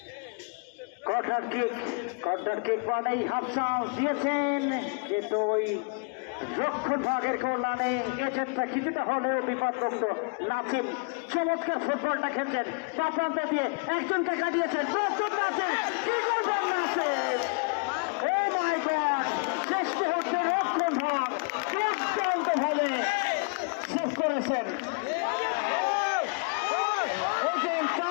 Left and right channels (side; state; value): right; quieter; 34.8 dB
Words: কর্নার কিক মানেই হাফসাও দিয়েছেন, কিন্তু ওই রক্ষণ ভাগের কল্যাণে এজেন্টটা কিছুটা হলেও বিপদগ্রস্ত। নাসিম চমৎকার ফুটবলটা খেলছেন, তা প্রান্ত দিয়ে একজনকে কাটিয়েছেন। শেষ মুহূর্তে রক্ষণ ভাগ দুর্দান্ত ভাবে শেষ করেছেন।